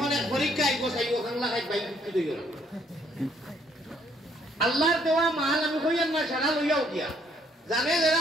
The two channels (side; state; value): both; normal; correlation 0.66